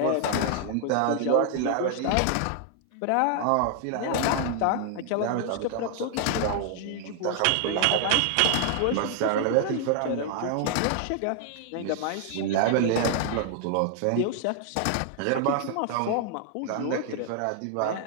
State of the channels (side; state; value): both; different; correlation 0.00